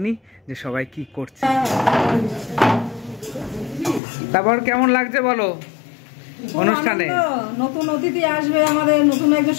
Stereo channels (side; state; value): right; drops out; at 4.0 s